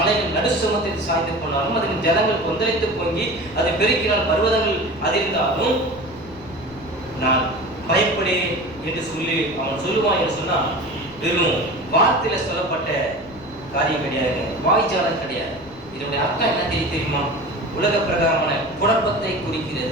நடுசுமத்தை சாய்ந்து போனாலும், அதன் ஜனங்கள் கொந்தளித்து பொங்கி அதை பெருக்கினால் பர்வதங்கள் அதிர்ந்தாலும் நான் பயப்படேன் என்று சொல்லி அவன் சொல்லுவான் என்று சொன்னால், வெறும் வார்த்தையில சொல்லப்பட்ட காரியம் கிடையாது, வாய்ச்சாலம் கிடையாது. இதனுடைய அர்த்தம் என்ன தெரியுமா? உலக பிரகாரமான குழப்பத்தை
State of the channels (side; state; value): left; noise; rumble, 21 dB below the sound